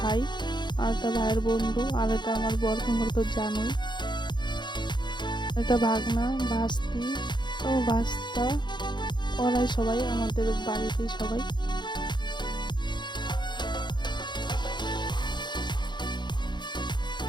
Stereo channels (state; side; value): late; right; 0.22 ms